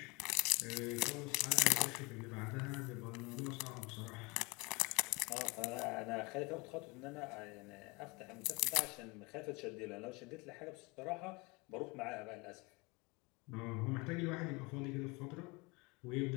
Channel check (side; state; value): right; quieter; 26.3 dB